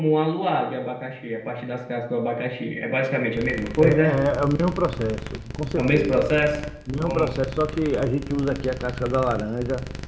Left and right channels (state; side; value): identical; both; correlation 1.00